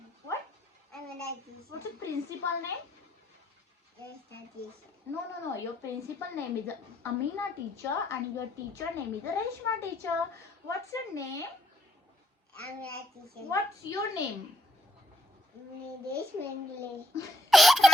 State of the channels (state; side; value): normal; both; correlation 0.74